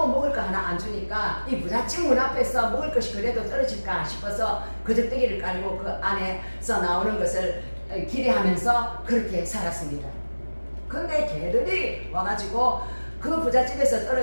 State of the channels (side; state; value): both; inverted; correlation -1.00